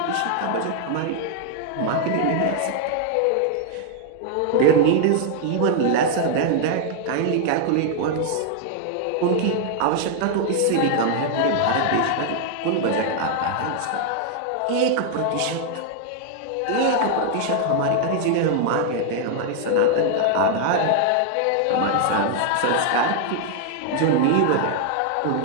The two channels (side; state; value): both; different; correlation 0.00